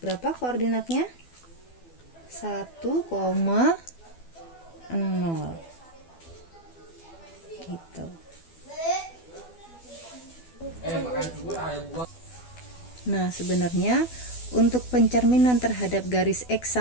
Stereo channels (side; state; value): right; late; 12 ms